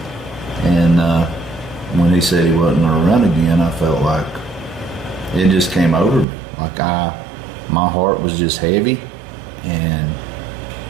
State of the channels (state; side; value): drops out; left; at 6.2 s